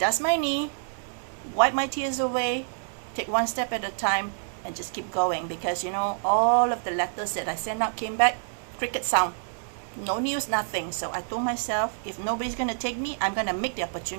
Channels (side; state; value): left; silent; digital silence